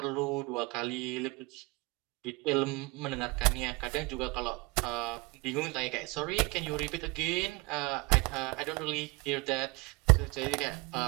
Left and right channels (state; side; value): quieter; left; 24.9 dB